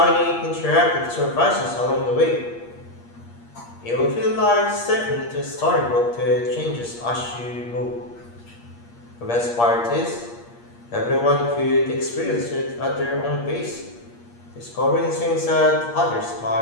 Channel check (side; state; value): right; late; 8.5 ms